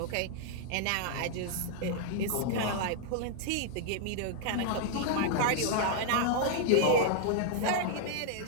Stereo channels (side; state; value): both; different; correlation -0.01